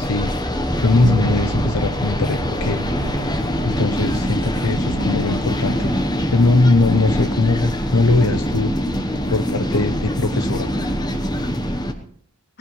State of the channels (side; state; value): both; normal; correlation 0.71